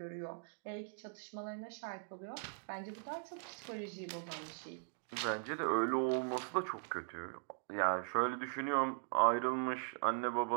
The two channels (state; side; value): quieter; left; 39.9 dB